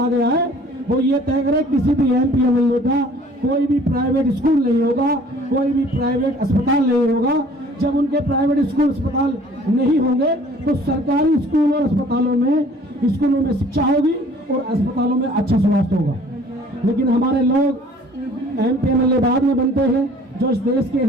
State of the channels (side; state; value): both; normal; correlation 0.53